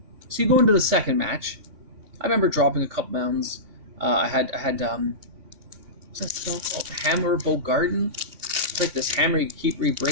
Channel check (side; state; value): left; late; 3.5 ms